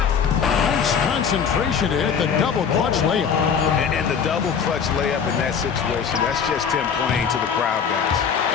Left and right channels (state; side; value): quieter; right; 6.9 dB